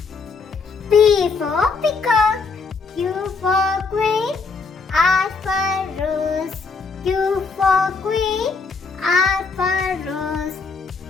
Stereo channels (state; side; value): quieter; right; 4.5 dB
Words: P for peacock, Q for queen, R for rose, Q for queen, R for rose,